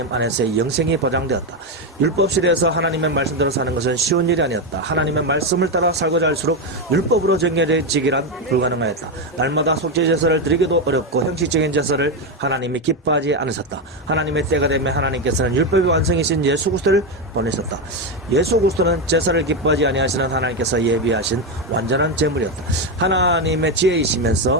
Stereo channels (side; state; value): both; normal; correlation 0.09